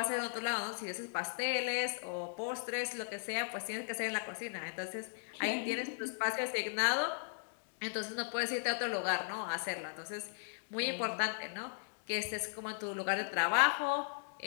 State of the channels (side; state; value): right; silent; digital silence